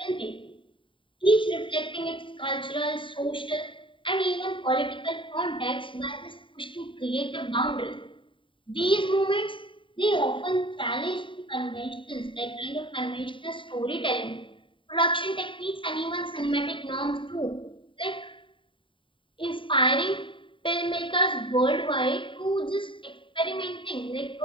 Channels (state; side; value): late; right; 0.25 ms